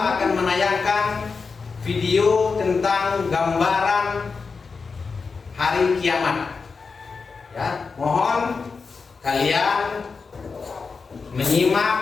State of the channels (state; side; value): quieter; right; 4.8 dB